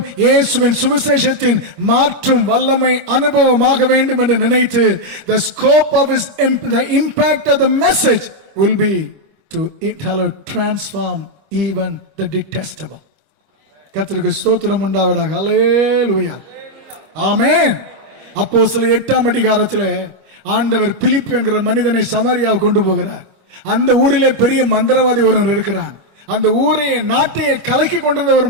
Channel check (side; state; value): left; late; 25 ms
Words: இயேசுவின் சுவிசேஷத்தின் மாற்றும் வல்லமை அனுபவமாக வேண்டும் என்று நினைத்து the scope of his the impact of the message will be to transform even the detestable. கர்த்தருக்கு ஸ்தோத்திரம் உண்டாவதாக. ஹல்லேலூயா. ஆமென். அப்போஸ்தலர் 8ஆம் அதிகாரத்திலே ஆண்டவர் பிலிப்பு என்கிற மனிதனை சமாரியாவுக்கு கொண்டு போகிறார். அந்த ஊரிலே பெரிய மந்திரவாதி ஒருவர் இருக்கிறான். அந்த ஊரையே நாட்டையே கலக்கி கொண்டிருந்த ஒரு